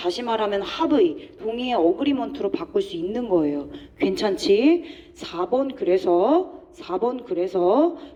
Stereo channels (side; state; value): both; identical; correlation 1.00